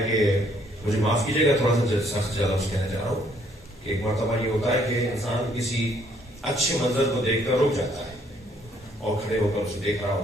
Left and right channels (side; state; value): both; normal; correlation 0.66